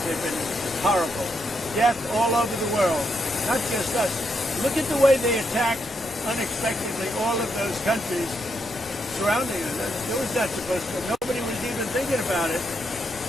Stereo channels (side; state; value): both; normal; correlation 0.80